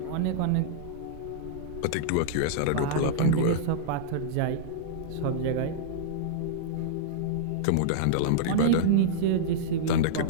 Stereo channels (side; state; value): both; different; correlation -0.02